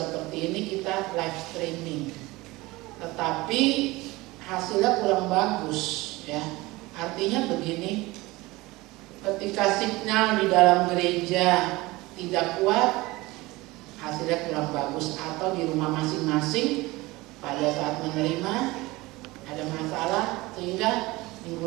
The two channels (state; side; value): quieter; left; 20.9 dB